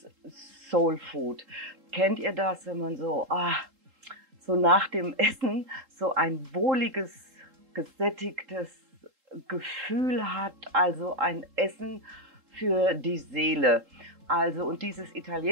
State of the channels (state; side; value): late; left; 3.8 ms